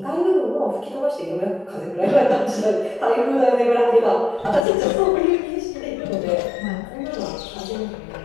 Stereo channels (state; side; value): drops out; right; at 4.7 s